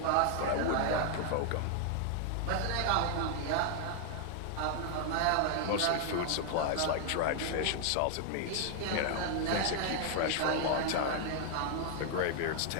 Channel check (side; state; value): both; different; correlation 0.00